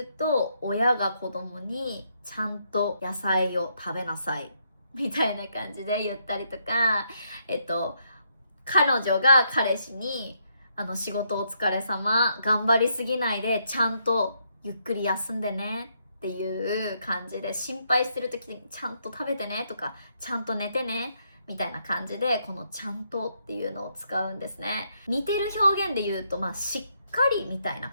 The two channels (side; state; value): both; inverted; correlation -0.76